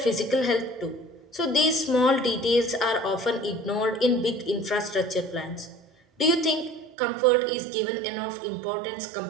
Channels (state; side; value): drops out; left; at 7.0 s